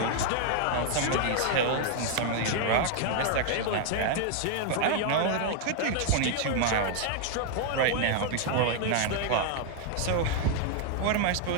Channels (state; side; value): different; both; correlation 0.00